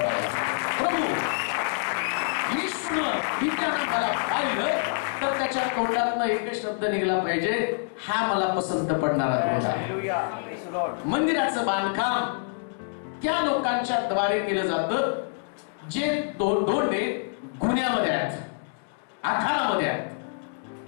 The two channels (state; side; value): silent; right; digital silence